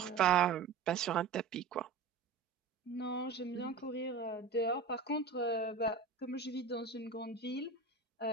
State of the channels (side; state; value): left; quieter; 4.9 dB